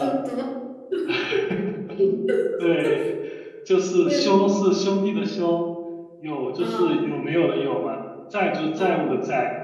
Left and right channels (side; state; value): both; identical; correlation 1.00